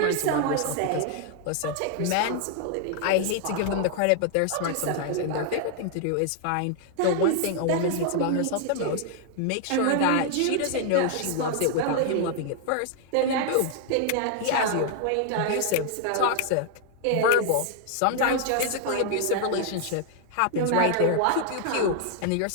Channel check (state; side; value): different; both; correlation 0.00